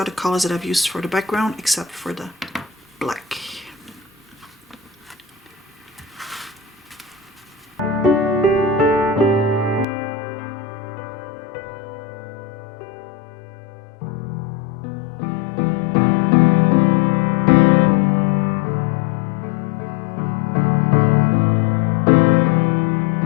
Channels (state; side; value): drops out; right; at 9.9 s